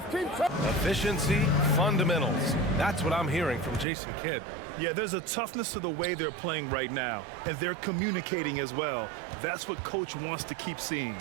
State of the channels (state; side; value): drops out; left; at 3.9 s